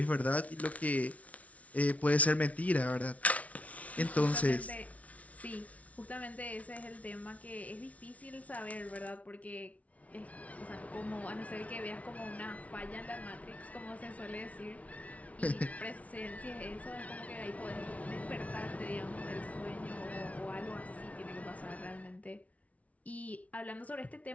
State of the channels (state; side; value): late; right; 0.067 ms